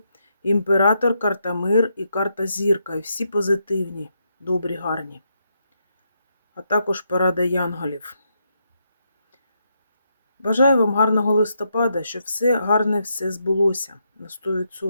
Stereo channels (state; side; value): inverted; both; correlation -0.80